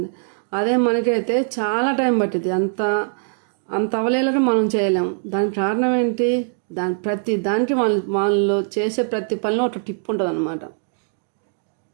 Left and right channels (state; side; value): silent; left; 65 dB below the other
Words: అదే మనకైతే చాలా టైం పట్టింది. అంత అవలేలగా మనం చేయలేం. దానికి కారణం ఏంటి? ప్రతి దానికి వాళ్ళు చేసే ప్రతి పనిలో ఒక టిప్ ఉంటుంది అన్నమాట.